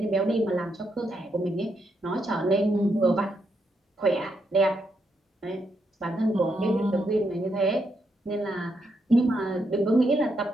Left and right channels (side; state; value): both; normal; correlation 0.80